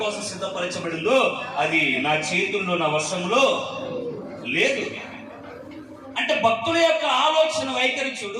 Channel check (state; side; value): identical; both; correlation 1.00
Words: కోసం సిద్ధపరచబడిందో అది నా చేతుల్లో నా వశంలో లేదు. భక్తుల యొక్క ఆలోచన వైఖరి